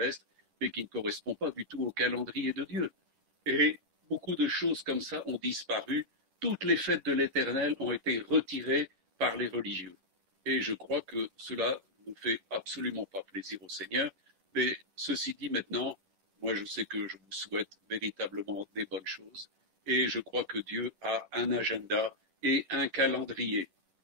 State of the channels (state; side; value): late; left; 11 ms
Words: mais qui ne correspond pas du tout au calendrier de Dieu. Et beaucoup de choses comme ça ont disparu. Toutes les fêtes de l'Éternel ont été retirées par les religieux. Et je crois que cela ne fait absolument pas plaisir au Seigneur. Mais ceci dit maintenant, moi je sais que je vous souhaite véritablement des bonnes choses. Et je crois que Dieu a un agenda et un calendrier.